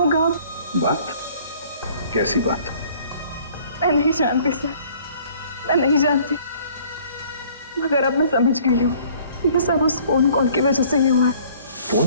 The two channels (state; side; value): inverted; both; correlation -0.56